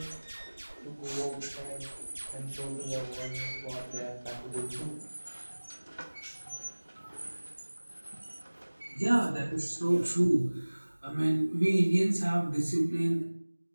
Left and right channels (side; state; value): both; inverted; correlation -1.00